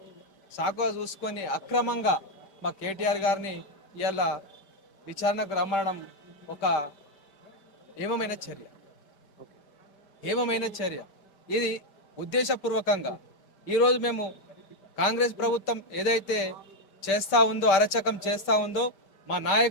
చూసుకొని అక్రమంగా మా కేటీఆర్ గారిని ఇవాళ విచారణకు రమ్మడం ఒక ఏమమైన చర్య ఇది ఉద్దేశపూర్వకంగా ఈరోజు మేము కాంగ్రెస్ ప్రభుత్వం ఏదైతే చేస్తూ ఉందో అరచకం చేస్తూ ఉందో మా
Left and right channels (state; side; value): late; right; 5.1 ms